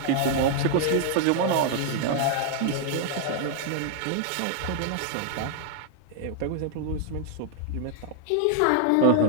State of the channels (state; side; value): different; both; correlation 0.00